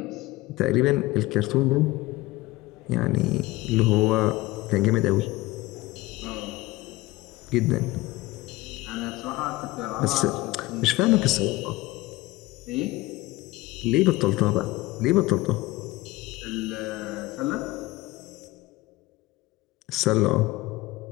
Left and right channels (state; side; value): quieter; right; 19.5 dB